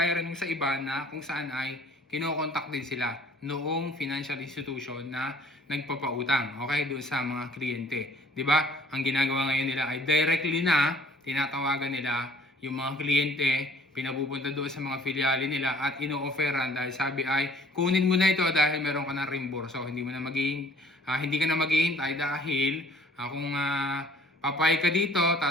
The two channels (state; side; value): normal; both; correlation 0.56